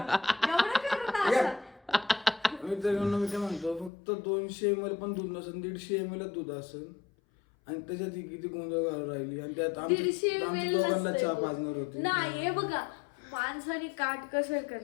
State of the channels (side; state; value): right; drops out; at 3.9 s